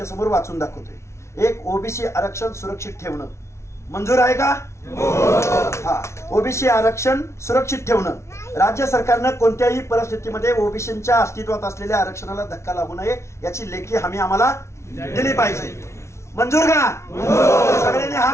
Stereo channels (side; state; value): right; late; 0.13 ms